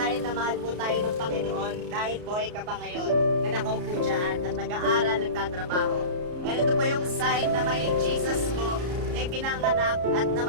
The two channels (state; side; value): late; left; 33 ms